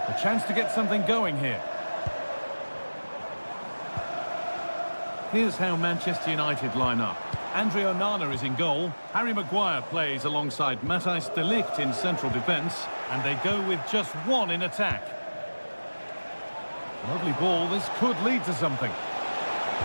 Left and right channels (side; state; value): both; inverted; correlation -1.00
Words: A chance to get something going here. Here's how Manchester United line up. Andre Onana is in goal. Harry Maguire plays alongside Matthijs de Ligt in central defence. And they go with just one in attack. Lovely ball. This could lead to something.